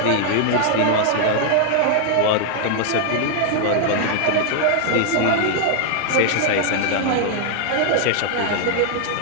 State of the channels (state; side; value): different; both; correlation 0.00